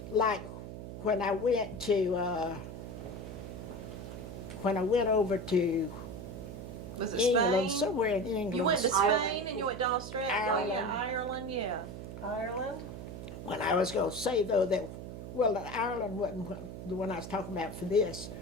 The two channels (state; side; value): noise; right; hum, 9 dB below the sound